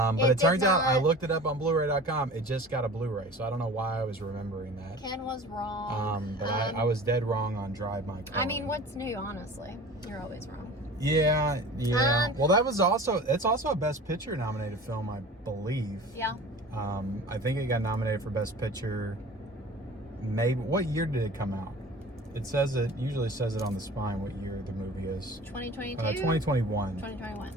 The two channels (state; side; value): normal; both; correlation 0.40